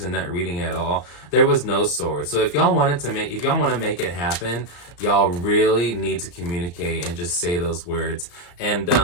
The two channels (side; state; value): right; late; 35 ms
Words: in that reading at all. There was no swords. So if y'all want to make it happen, y'all really need to communicate and just say those words. And